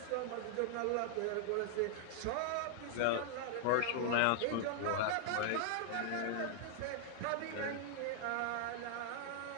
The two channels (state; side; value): different; both; correlation 0.00